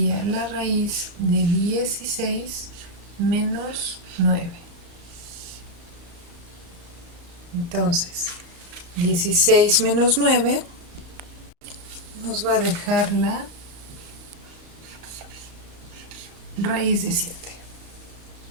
la raíz de 16 menos 9. Entonces, 16 menos 9 nos va a dejar la raíz de 7.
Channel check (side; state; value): left; late; 34 ms